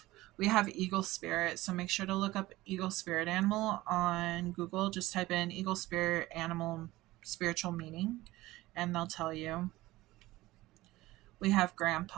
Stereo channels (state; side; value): quieter; left; 18.0 dB